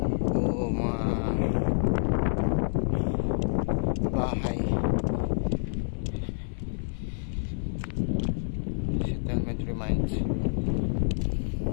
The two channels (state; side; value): silent; right; 59 dB below the other